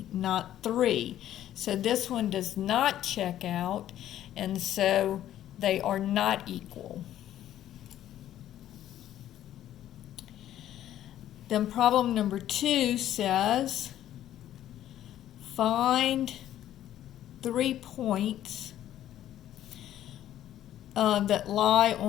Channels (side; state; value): right; quieter; 12.1 dB